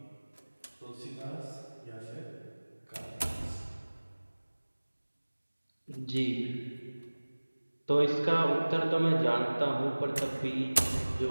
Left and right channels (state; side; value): inverted; both; correlation -1.00